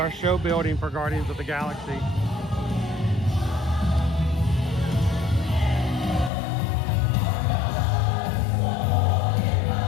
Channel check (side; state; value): right; drops out; at 6.3 s